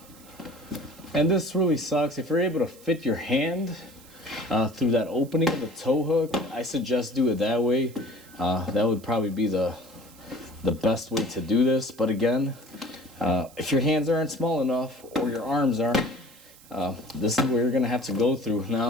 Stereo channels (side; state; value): right; noise; hiss, 23 dB below the sound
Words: And this really sucks. If you're able to fit your hand through that opening of the tow hook, I suggest do it that way. That would probably be the best way to do this. But again, if your hands aren't small enough or your arms aren't, this is where you're gonna have to go through.